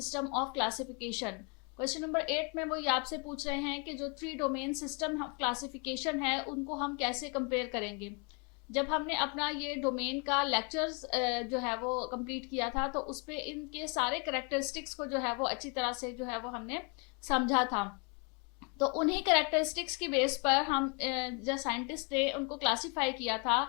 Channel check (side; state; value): right; quieter; 34.8 dB